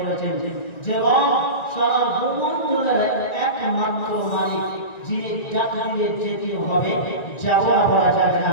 যে সারা ভূমণ্ডলের একমাত্র মালিক, যিনি ডাক দিলে যেতে হবে, যাওয়া বলা যাবে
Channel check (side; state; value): right; late; 1.9 ms